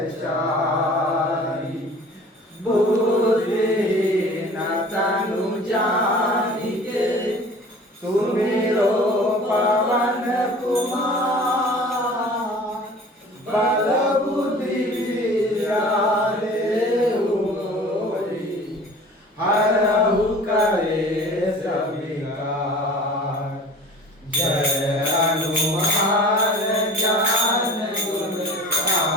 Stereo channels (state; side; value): normal; both; correlation 0.44